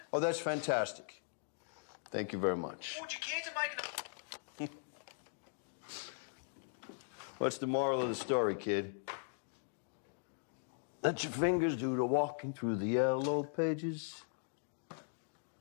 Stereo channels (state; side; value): silent; right; digital silence